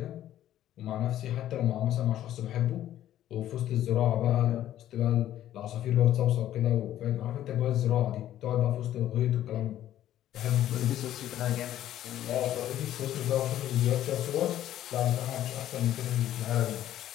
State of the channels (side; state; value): right; quieter; 12.4 dB